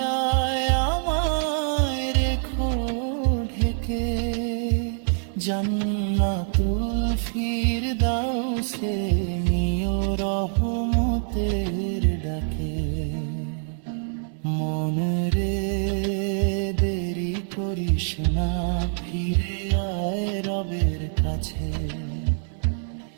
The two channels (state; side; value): silent; left; 62 dB below the other